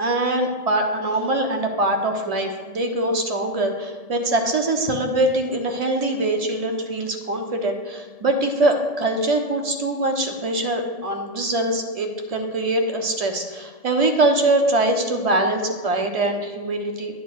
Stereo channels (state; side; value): late; left; 1.7 ms